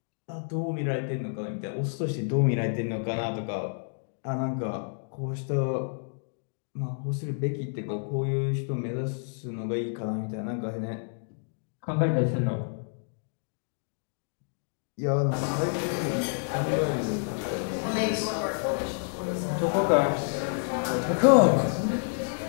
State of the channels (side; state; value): right; silent; digital silence